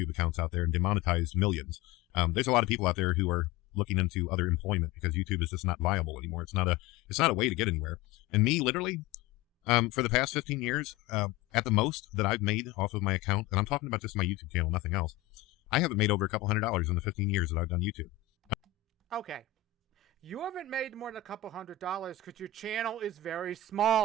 accounts out there and demonetized millions. There's a lot of people out there who are looking into other employment because YouTube is just not viable anymore. It's not a way to get anywhere. And me, literally, for the past 15 years, at the most that I've made off of my account, and I'm talking about just my YouTube channel, nothing else, I haven't made over a couple $100 in the 15 years that I've done YouTube. Okay. You haven't made more than a couple $100 because your channel is very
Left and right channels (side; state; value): right; quieter; 10.4 dB